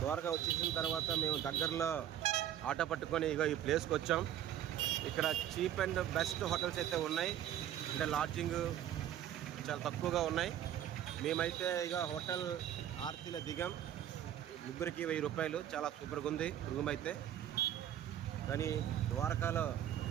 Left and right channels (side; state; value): left; quieter; 11.1 dB